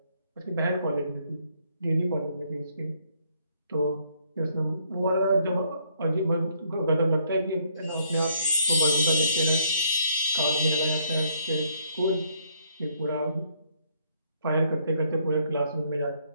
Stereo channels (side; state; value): both; inverted; correlation -0.68